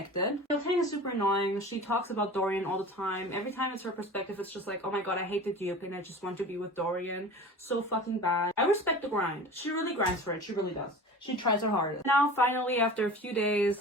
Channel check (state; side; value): normal; both; correlation 0.37